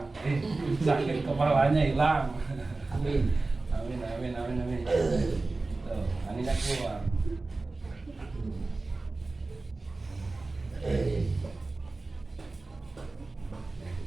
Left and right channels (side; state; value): left; quieter; 3.4 dB